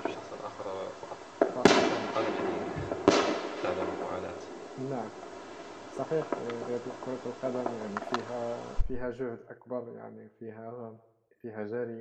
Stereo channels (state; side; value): identical; both; correlation 1.00